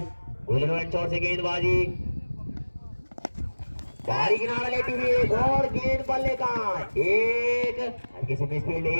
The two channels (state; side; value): inverted; both; correlation -1.00